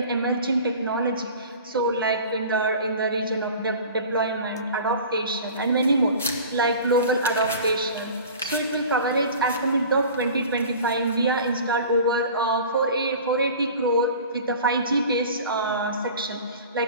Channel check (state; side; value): inverted; both; correlation -0.41